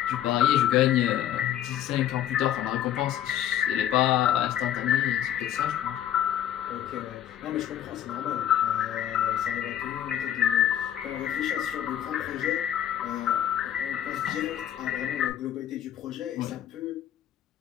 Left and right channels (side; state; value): right; quieter; 10.9 dB